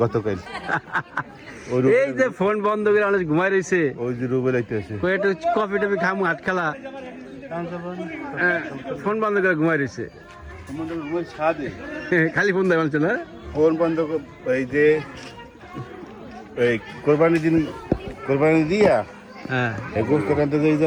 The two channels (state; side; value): identical; both; correlation 1.00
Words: গতকাল এই যে ফোন বন্ধ করে অনেক ঘুমাই রয়েছে ওই যে রুবেল আইতেছে একটু কফি টফি খামু হাত খেলা ফোন বন্ধ করে ঘুমাই রয়েছে খালি ফোন দেয় বলছে না ফোন বন্ধ এই যে এই কোরবানি দিয়া হ্যাঁ এই গোস্ত কানতে যে